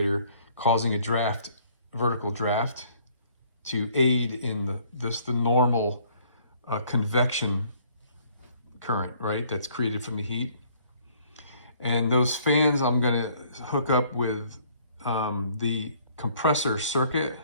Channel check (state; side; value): inverted; both; correlation -0.61